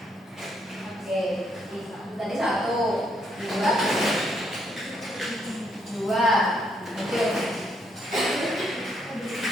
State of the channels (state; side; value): normal; both; correlation 0.74